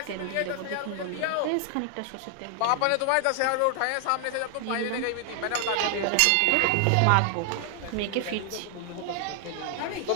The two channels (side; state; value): both; different; correlation 0.00